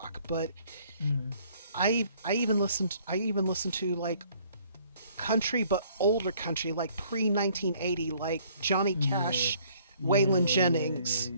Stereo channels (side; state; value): both; inverted; correlation -0.60